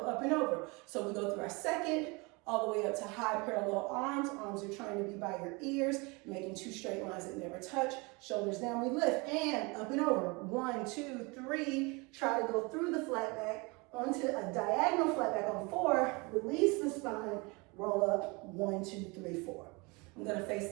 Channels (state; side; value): quieter; left; 27.7 dB